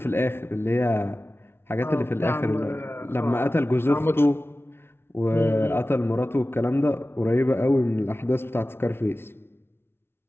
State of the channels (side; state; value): right; late; 0.12 ms